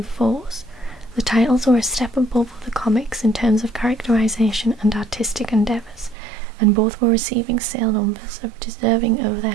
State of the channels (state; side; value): drops out; left; at 6.2 s